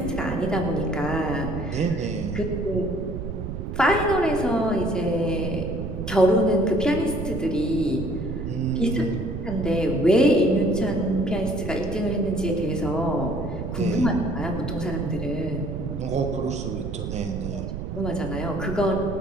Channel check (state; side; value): noise; right; rumble, 6 dB below the sound